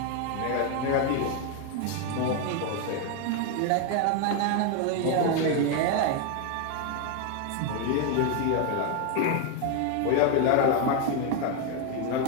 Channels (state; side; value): different; both; correlation 0.01